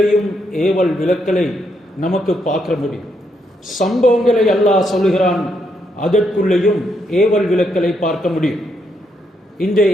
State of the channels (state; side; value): normal; both; correlation 0.77